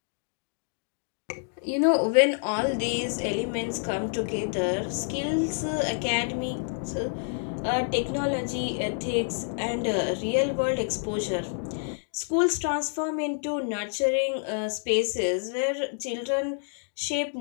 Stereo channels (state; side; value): silent; right; digital silence